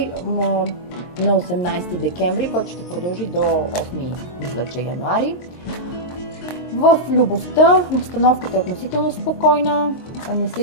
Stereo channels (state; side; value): late; right; 22 ms